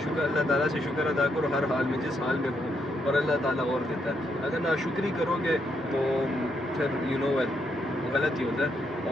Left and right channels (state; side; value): normal; both; correlation 0.77